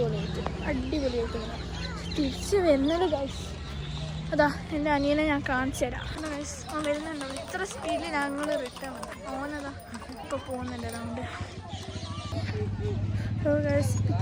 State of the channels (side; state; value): both; identical; correlation 1.00